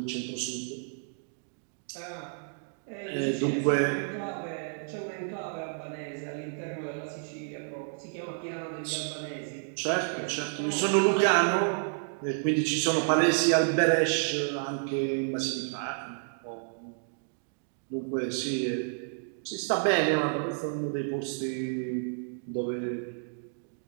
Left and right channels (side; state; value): left; silent; digital silence